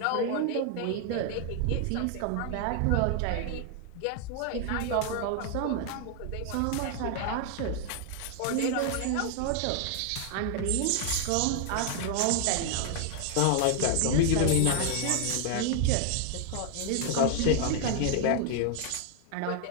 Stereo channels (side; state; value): both; different; correlation 0.00